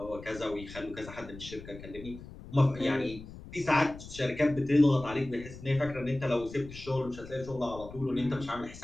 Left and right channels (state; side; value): noise; left; rumble, 15 dB below the sound